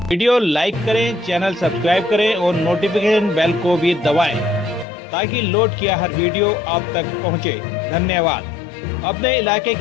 वीडियो लाइक करें, चैनल सब्सक्राइब करें और नोटिफिकेशन बेल को भी दबाएं ताकि लोड किया हर वीडियो आप तक पहुंचे। धन्यवाद। अपने इलाके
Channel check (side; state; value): right; drops out; at 4.9 s